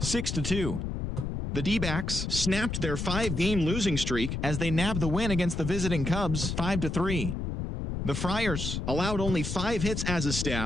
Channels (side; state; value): left; noise; rumble, 3 dB below the sound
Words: 6-2. The D-backs snapped their 5-game losing streak as they nabbed the win against the visiting Cubs, 5-3. The Friars allowed only 5 hits as a